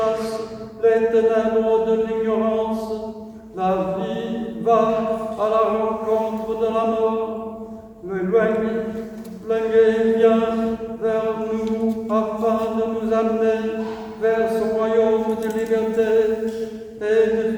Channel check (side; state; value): both; identical; correlation 1.00